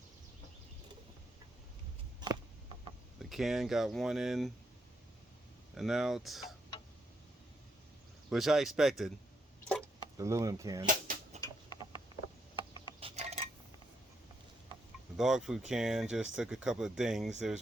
can got one in and out, which I expected. The aluminum can. The dog food can just took a couple of dings.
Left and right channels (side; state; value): both; normal; correlation 0.77